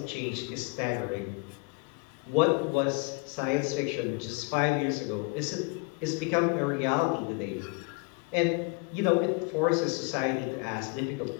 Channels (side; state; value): right; quieter; 30.2 dB